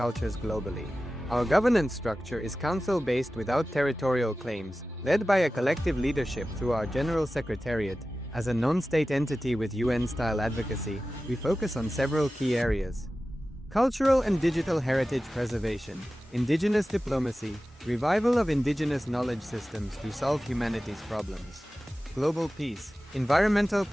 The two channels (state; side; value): normal; both; correlation 0.95